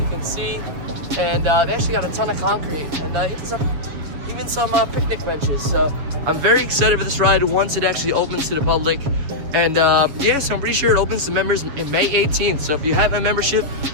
can see. And they actually got a ton of concrete, and even some picnic benches. So I'm very excited for this ride once it actually opens to the public. And yeah, so I'm pretty sure it opens to members in May 18th. So if you have a membership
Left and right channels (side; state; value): left; late; 7.5 ms